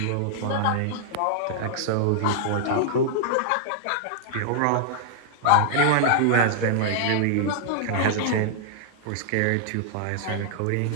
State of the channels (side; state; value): both; different; correlation -0.01